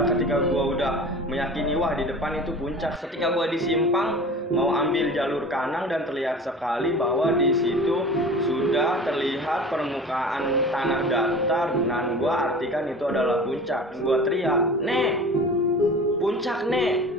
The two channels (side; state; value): both; normal; correlation 0.38